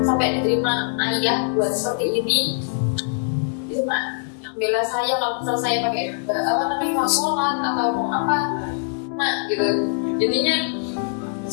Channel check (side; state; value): right; silent; 63 dB below the other